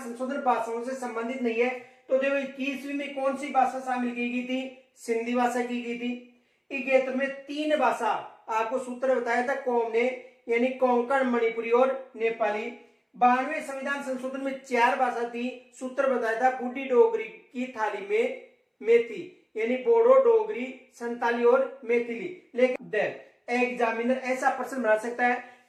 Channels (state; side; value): identical; both; correlation 1.00